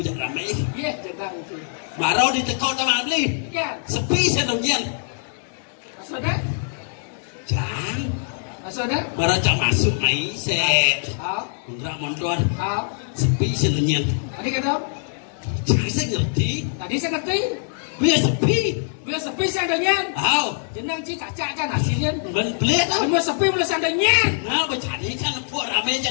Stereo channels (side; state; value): right; silent; digital silence